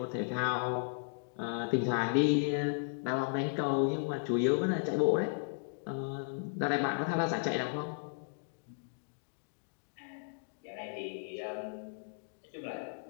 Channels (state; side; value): silent; right; digital silence